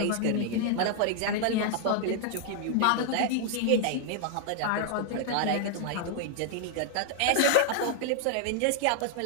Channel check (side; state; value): both; different; correlation 0.00